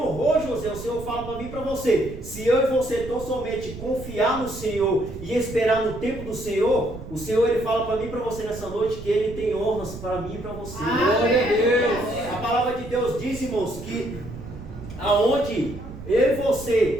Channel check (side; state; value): right; noise; rumble, 12 dB below the sound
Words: José. O Senhor fala para mim e para você: se eu e você tão somente confiar no Senhor e esperar no tempo do Senhor, o Senhor, Ele fala para mim e para você nessa noite que Ele tem honras para mim e para você. Glória a Deus. A palavra de Deus diz, irmãos, que aonde eu e